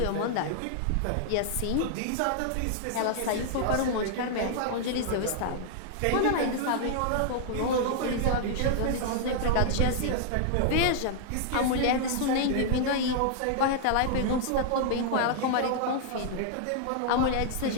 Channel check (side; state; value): both; different; correlation -0.01